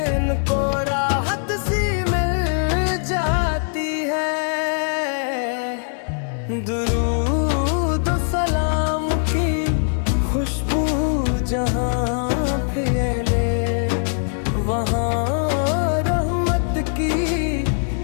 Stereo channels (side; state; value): right; silent; digital silence